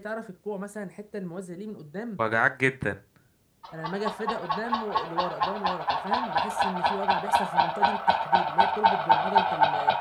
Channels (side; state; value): both; identical; correlation 1.00